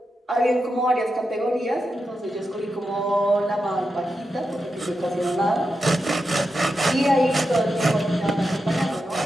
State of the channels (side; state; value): both; normal; correlation 0.88